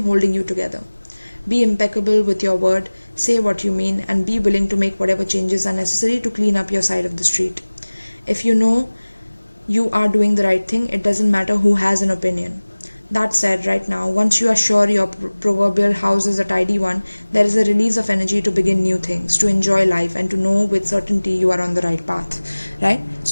holding you together. Be impeccable with your word, say what you mean, and be willing to make whatever changes are necessary to clean up your side of the street. If you know you are doing the right thing, it doesn't matter who has an opinion. That said, right now, once you are sure your proverbial house is a tidy one, there is a release of energy to begin new things, to enjoy life, and to know with certainty you are on the right path, right?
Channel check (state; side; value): inverted; both; correlation -1.00